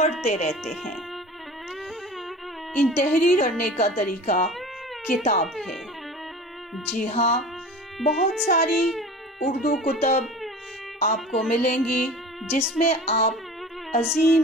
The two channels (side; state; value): both; normal; correlation 0.39